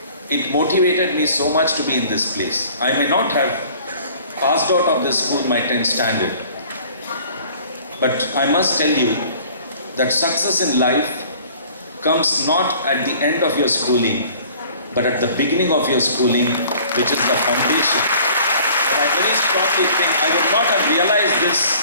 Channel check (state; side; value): inverted; both; correlation -0.51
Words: It motivated me so much to be in this place. I may not have passed out of this school my 10th standard, but I must tell you that success in life comes not at the end of your schooling, but at the beginning of your schooling, which is the foundation. And I very strongly think I would not have realized